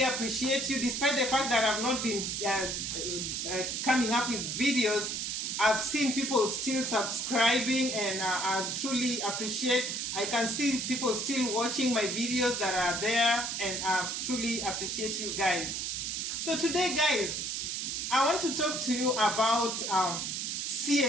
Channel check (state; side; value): noise; right; hiss, 2 dB below the sound